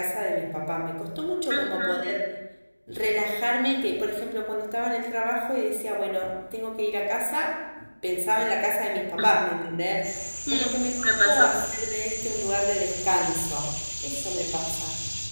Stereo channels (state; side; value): inverted; both; correlation -1.00